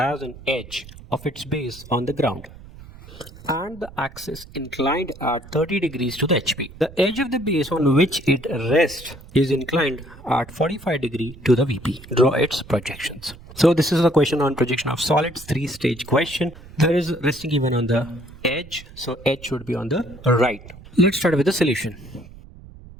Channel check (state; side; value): noise; right; rumble, 18 dB below the sound